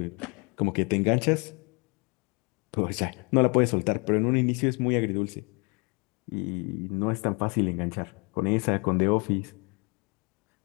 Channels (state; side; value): quieter; right; 31.9 dB